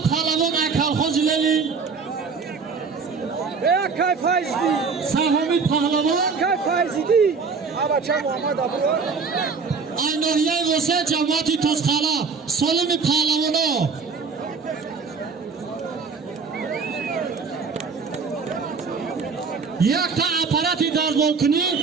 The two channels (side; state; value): left; quieter; 5.1 dB